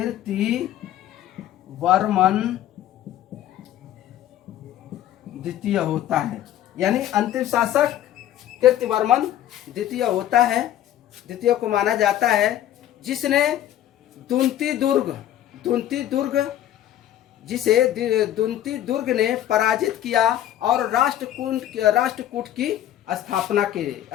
द्वितीय होता है। यानी अंतिम शासक कीर्तिवर्मन द्वितीय होता है, द्वितीय को माना जाता है, जिसने दुंती दुर्ग जिसे दुंती दुर्ग ने पराजित किया और राष्ट्रकूट की स्थापना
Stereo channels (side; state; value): right; quieter; 12.0 dB